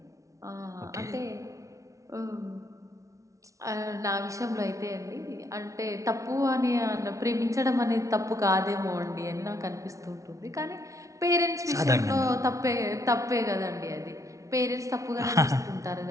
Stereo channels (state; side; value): late; left; 0.15 ms